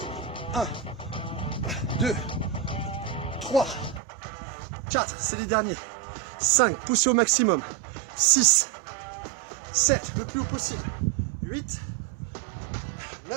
1, 2, 3, 4, c'est les derniers. 5, poussez au maximum. 6, 7, le plus haut possible. 8,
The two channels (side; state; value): left; drops out; at 4.0 s